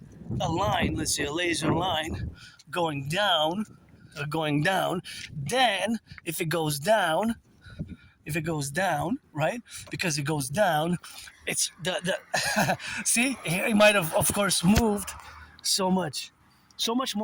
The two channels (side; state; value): both; identical; correlation 1.00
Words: a line, let's say a laser line going down, then if it goes down, right? Because it goes down, it's the see, here it might have, of course, moved so much